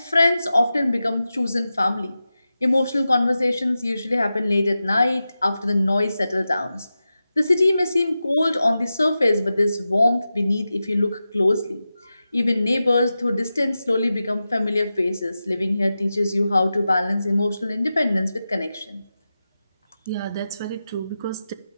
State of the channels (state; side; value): inverted; both; correlation -0.92